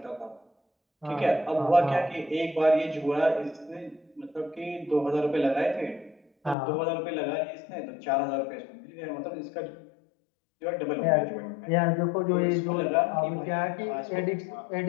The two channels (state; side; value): drops out; right; at 6.6 s